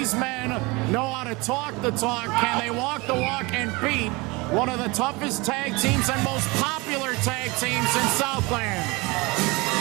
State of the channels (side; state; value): left; quieter; 24.9 dB